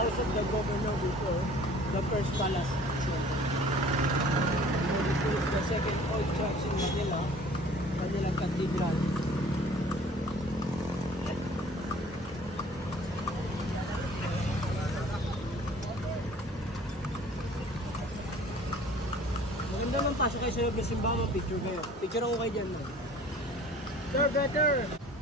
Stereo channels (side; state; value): both; normal; correlation 0.50